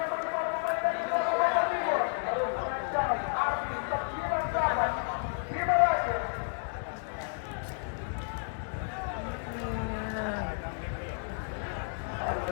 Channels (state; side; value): silent; right; 57 dB below the other